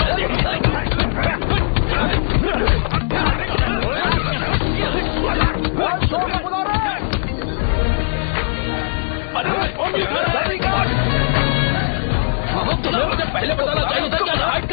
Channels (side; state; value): right; silent; 66 dB below the other